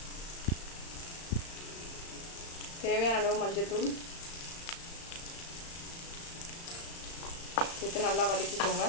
தேவையான அளவு மஞ்சள்தூள் சேர்த்து நல்லா வதக்கிக்கோங்க.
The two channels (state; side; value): late; right; 35 ms